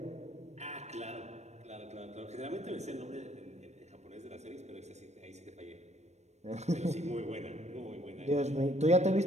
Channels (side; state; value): left; late; 0.32 ms